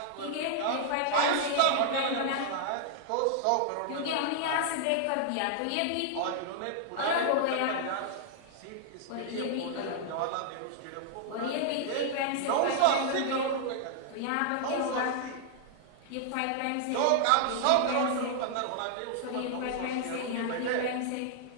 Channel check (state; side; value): different; both; correlation -0.01